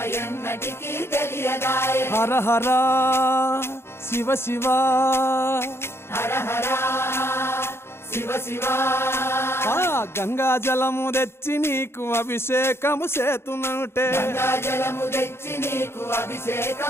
ఎన్నటికీ తెలియదాయే హర హర శివ శివ హర హర శివ శివ గంగా జలము తెచ్చి నీకు అభిషేకము చేతునంటే గంగా జలము తెచ్చి నీకు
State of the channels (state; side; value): late; right; 0.12 ms